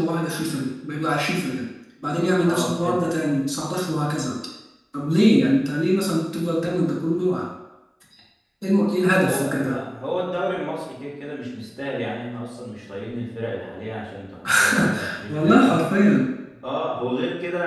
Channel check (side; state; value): both; identical; correlation 1.00